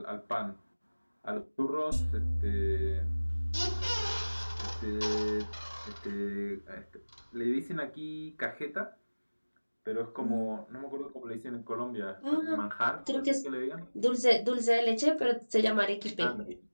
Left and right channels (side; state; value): both; inverted; correlation -1.00